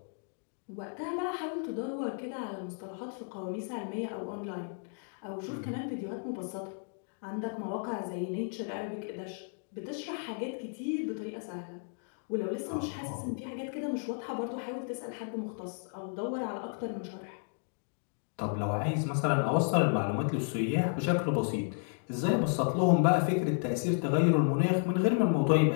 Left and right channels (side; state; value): right; silent; 56 dB below the other